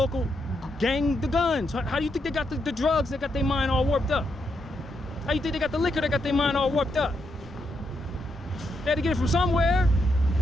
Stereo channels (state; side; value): normal; both; correlation 0.81